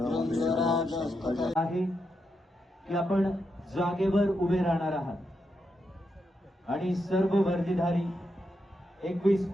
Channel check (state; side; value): normal; both; correlation 0.84